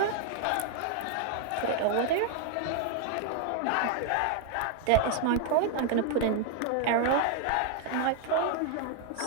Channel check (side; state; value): both; different; correlation 0.01